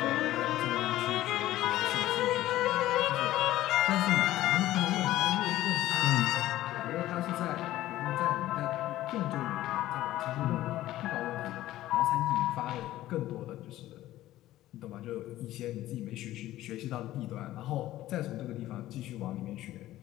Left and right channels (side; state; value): right; quieter; 14.9 dB